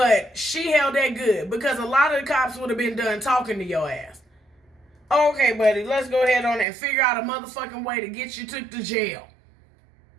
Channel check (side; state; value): left; drops out; at 6.7 s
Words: she held that good because a lot of the cops would have been done talking to your ass. Okay, buddy, let's go ahead on and figure out a motherfucking way to get you took to jail.